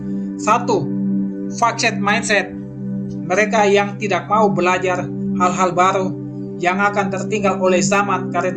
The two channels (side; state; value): both; identical; correlation 1.00